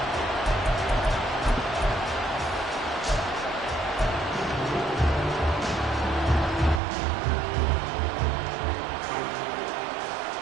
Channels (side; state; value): left; drops out; at 6.8 s